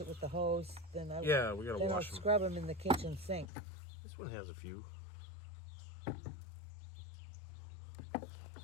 it with the hose. Then We gotta I'll wash them. scrub them in the kitchen sink. This one has a few.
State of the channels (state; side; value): drops out; right; at 3.5 s